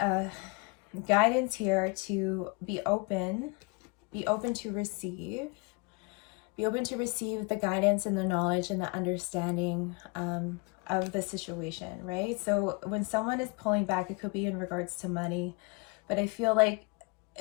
guidance here to be open to receive. Be open to receive the guidance and the knowledge and the understanding of the situation, right? So when someone is pulling back, it could be in regards to money, but I feel like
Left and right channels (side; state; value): right; quieter; 29.9 dB